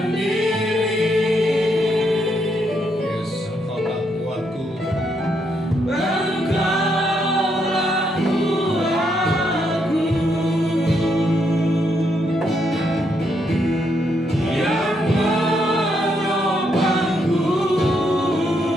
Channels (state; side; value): normal; both; correlation 0.77